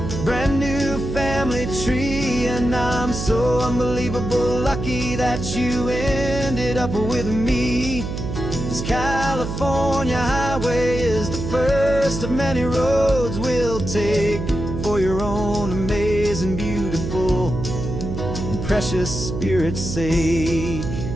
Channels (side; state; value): right; noise; hum, 5 dB below the sound